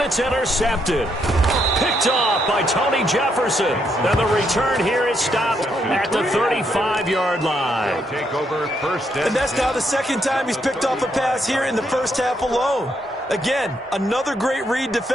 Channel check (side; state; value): both; normal; correlation 0.76